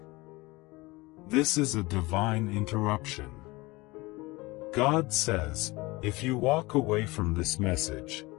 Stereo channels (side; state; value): right; quieter; 22.5 dB